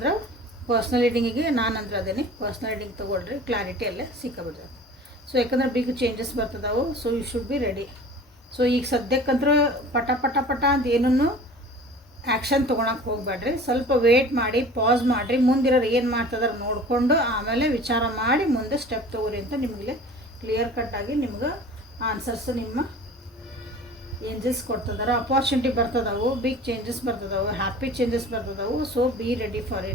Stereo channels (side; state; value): both; normal; correlation 0.43